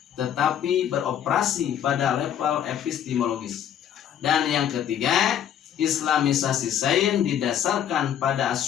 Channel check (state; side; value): quieter; right; 9.7 dB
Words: tetapi beroperasi pada level epistemologis. Dan yang ketiga, Islamisasi sains didasarkan pada